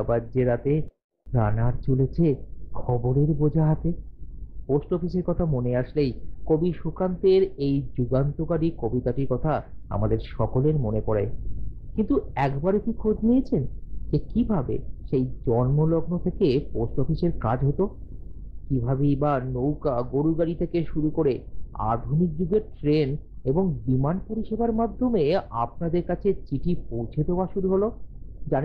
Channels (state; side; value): identical; both; correlation 1.00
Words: বাজছে রাতে। রানার চলেছে খবরের বোঝা হাতে। পোস্ট অফিসের কথা মনে আসলেই কবি সুকান্তের এই যুগান্তকারী কবিতাটির কথা আমাদের সকলের মনে পড়ে। কিন্তু একবারে কি খোঁজ নিয়েছেন যে কিভাবে সেই জন্মলগ্ন থেকে পোস্ট অফিসের কাজ হতো? কিভাবেই বা নৌকা, গরু গাড়ি থেকে শুরু করে আধুনিক যুগের ট্রেন এবং বিমান পরিষেবার মাধ্যমে আপনাদের কাছে চিঠি পৌঁছে দেওয়া শুরু হলো?